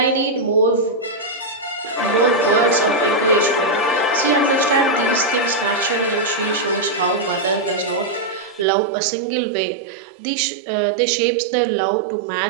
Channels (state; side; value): drops out; left; at 8.7 s